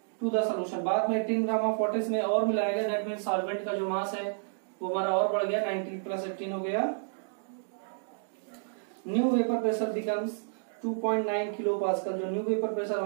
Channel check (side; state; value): left; silent; digital silence